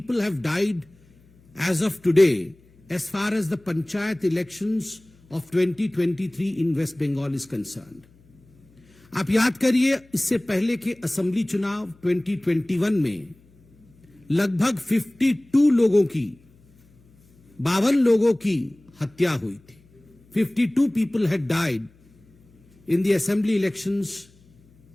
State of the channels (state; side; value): noise; left; hum, 30 dB below the sound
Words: have died as of today as far as the panchayat elections of 2023 in West Bengal is concerned. आप याद करिए, इससे पहले के असेंबली चुनाव 2021 में लगभग 52 लोगों की, 52 लोगों की हत्या हुई थी। 52 people had died in the assembly elections